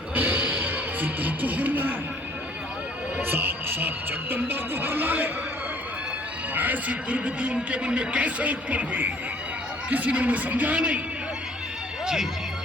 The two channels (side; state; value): both; normal; correlation 0.58